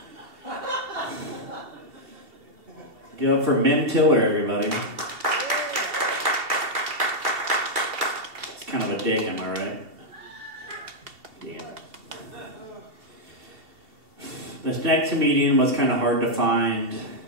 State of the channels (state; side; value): late; left; 2.7 ms